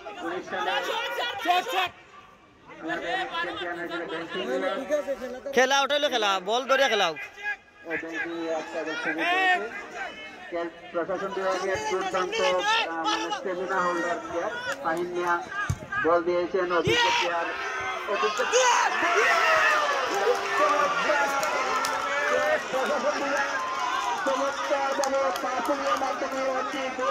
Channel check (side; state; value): both; identical; correlation 1.00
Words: 19 সালে খেলা ওটাইলো, খেলা বল ধরে খেলাও, প্রশাসন বিভাগের দুর্দান্ত স্টেমিনা হোল্ডার প্লেয়ার ফাহিম মিয়া বল দিয়েছেন অভিজ্ঞ প্লেয়ার চমৎকারভাবে পাসিংয়ের মাধ্যমে একটি